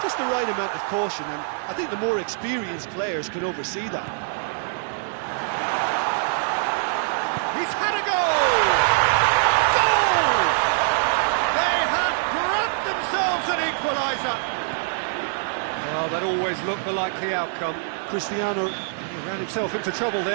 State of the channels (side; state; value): left; silent; digital silence